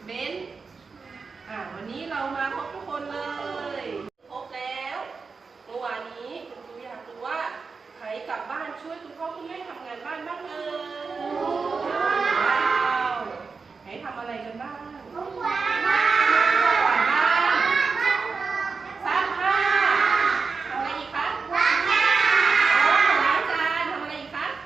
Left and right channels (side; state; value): left; quieter; 4.8 dB